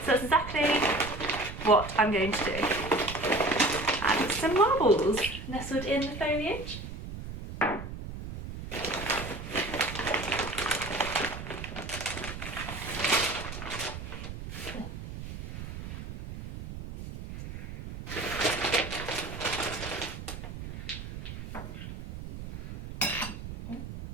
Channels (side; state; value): right; noise; rumble, 9 dB below the sound